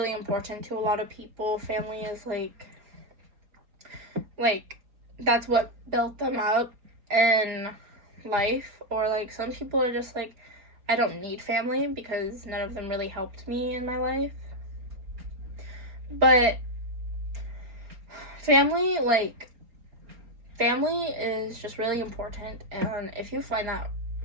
important to a lot of people. Family is like that's what built them up in life. Or like some people are just like, I don't need family because none of them really helped me in my life. But family is just really important, and if you find that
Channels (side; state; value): left; late; 4.4 ms